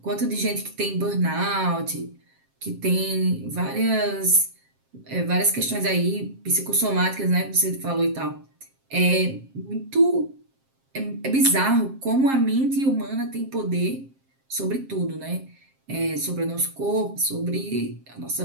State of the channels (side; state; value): left; late; 7.5 ms